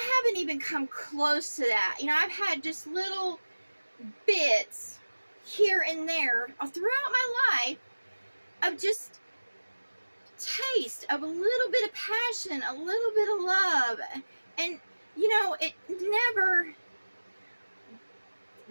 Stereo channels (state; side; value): inverted; both; correlation -1.00